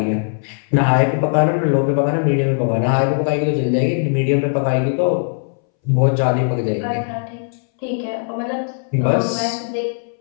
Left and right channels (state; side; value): silent; right; 64 dB below the other